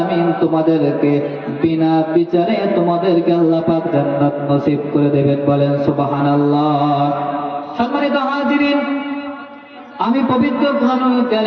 তোমাদেরকে বিনা বিচারে তোমাদেরকে আল্লাহ পাক জান্নাত নসিব করে দেবেন। বলেন সুবহানাল্লাহ। সম্মানিত হাজিরিন, আমি পবিত্র কোরআনুল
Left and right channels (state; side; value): identical; both; correlation 1.00